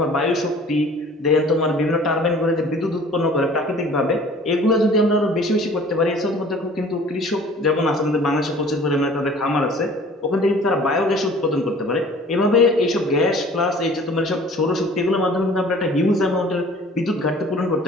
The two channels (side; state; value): both; normal; correlation 0.49